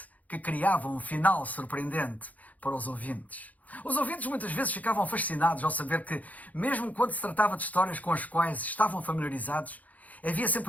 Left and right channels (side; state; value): right; late; 0.076 ms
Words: que criava um final surpreendente para os ouvintes. Os ouvintes muitas vezes ficavam fascinados ao saber que, mesmo quando se tratava de histórias com as quais estavam familiarizados, havia